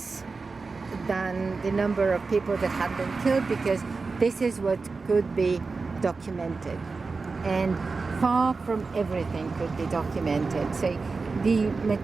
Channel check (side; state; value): left; quieter; 4.2 dB